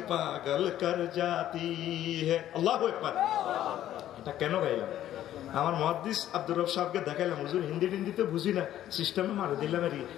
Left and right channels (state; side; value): quieter; right; 12.3 dB